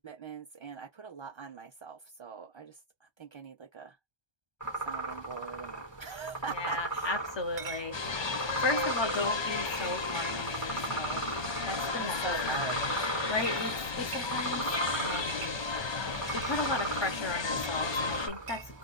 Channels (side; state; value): right; late; 1.2 ms